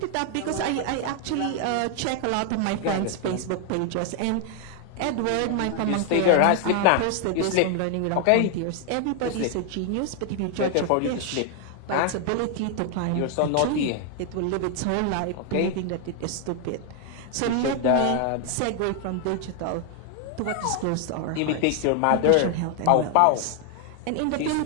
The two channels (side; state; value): both; different; correlation 0.00